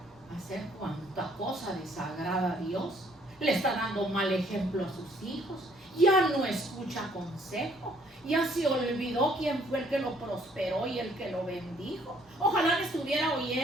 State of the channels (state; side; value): normal; both; correlation 0.63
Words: a hacer cuanta cosa desagrada a Dios. Le está dando mal ejemplo a sus hijos. Ya no escucha consejo. Ya se olvidó quién fue el que lo prosperó y el que lo bendijo. Ojalá me estuviera